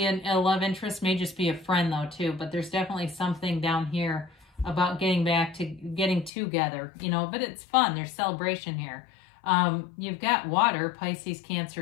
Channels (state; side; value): drops out; right; at 6.3 s